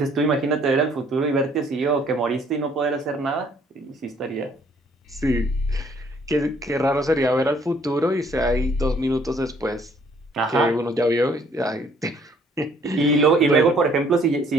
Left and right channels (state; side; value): normal; both; correlation 0.62